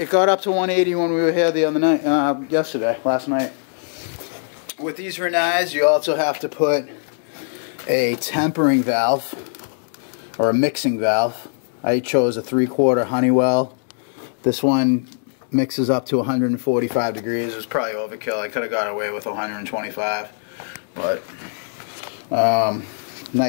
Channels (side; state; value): right; silent; digital silence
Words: got up to 180 when we were here the other night, last night. With these Rinnais, you also have to put a tempering valve or a mixing valve. I chose a 3/4 Honeywell. This one mixes up to 145 degrees. It was probably overkill. I could have got away with 125, but